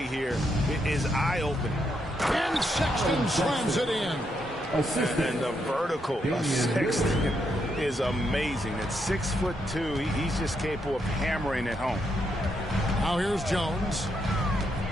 here is eye-opening. And Sexton slams it in. And the vertical of Sexton is amazing. At 6'2", he's just capable of hammering it home. Now here's Jones.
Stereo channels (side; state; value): both; normal; correlation 0.79